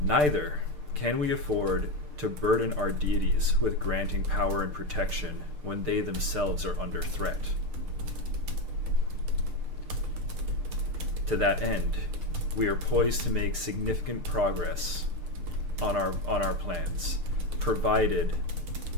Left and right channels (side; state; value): left; late; 6.7 ms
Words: Neither can we afford to burden our deities with granting power and protection when they themselves are under threat. To that end, we are poised to make significant progress on our plans, provided